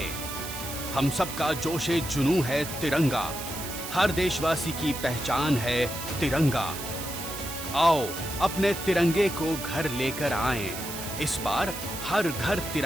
हम सबका जोशे जुनून है तिरंगा। हर देशवासी की पहचान है तिरंगा। आओ अपने तिरंगे को घर लेकर आएं। इस बार हर घर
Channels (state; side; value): noise; right; hiss, 8 dB below the sound